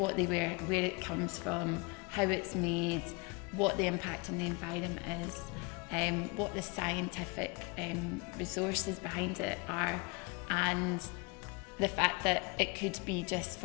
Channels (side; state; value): right; quieter; 27.9 dB